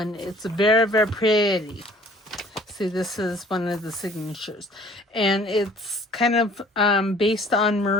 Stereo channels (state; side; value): normal; both; correlation 0.53